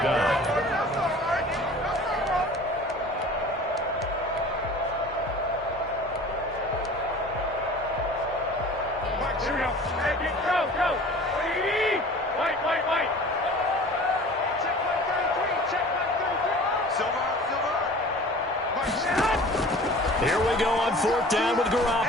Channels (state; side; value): normal; both; correlation 0.43